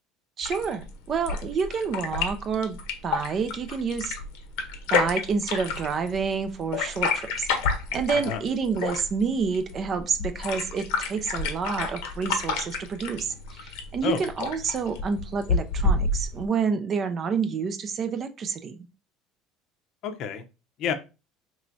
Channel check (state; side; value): normal; both; correlation 0.44